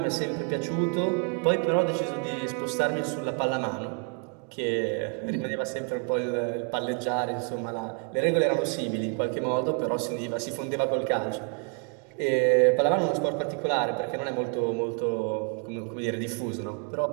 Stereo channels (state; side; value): quieter; left; 39.9 dB